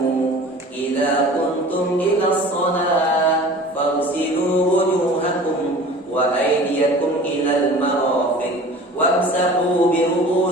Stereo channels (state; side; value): normal; both; correlation 0.42